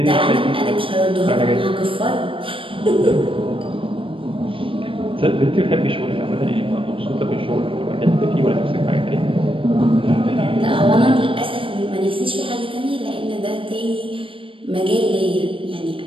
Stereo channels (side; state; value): left; late; 0.25 ms